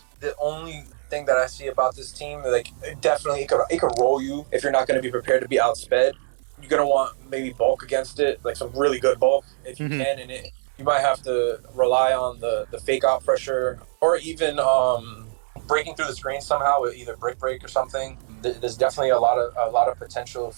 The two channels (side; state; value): left; silent; 63 dB below the other